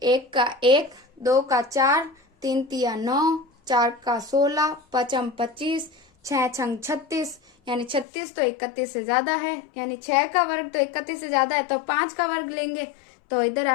1 का 1, 2 का 4, 3 तिया 9, 4 का 16, 5 25, 6 छंग 36, यानी 36 तो 31 से ज्यादा है, यानी 6 का वर्ग तो 31 से ज्यादा है, तो 5 का वर्ग लेंगे। तो इधर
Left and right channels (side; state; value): right; drops out; at 8.1 s